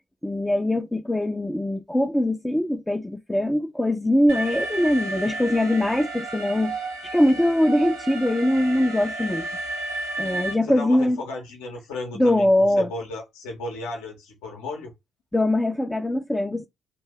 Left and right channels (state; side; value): normal; both; correlation 0.95